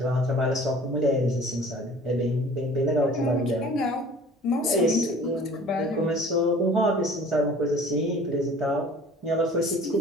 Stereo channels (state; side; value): normal; both; correlation 0.47